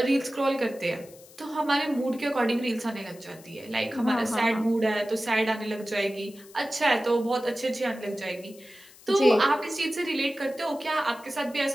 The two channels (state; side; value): noise; left; hiss, 23 dB below the sound